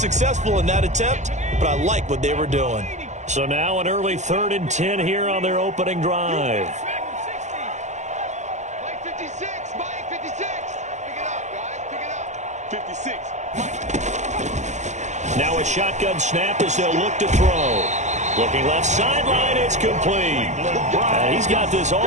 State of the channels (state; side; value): late; left; 0.34 ms